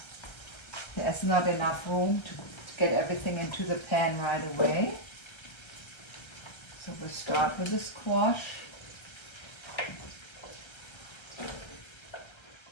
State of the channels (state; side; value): late; right; 1.3 ms